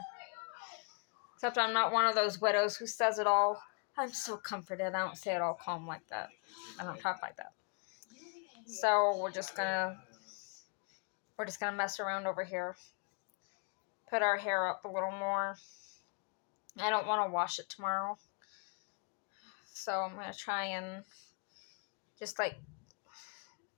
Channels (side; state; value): right; quieter; 39.5 dB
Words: Except I'm not one of those widows who says it all. I'm so comforted. I don't say it all calm like that. I don't talk like that. So we're just gonna mess around over here. Put our hair up a little more. I don't want to wash it tomorrow. So I'm gonna try and just like